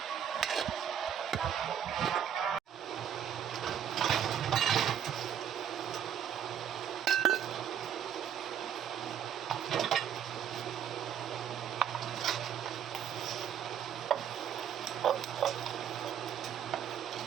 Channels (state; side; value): quieter; left; 9.0 dB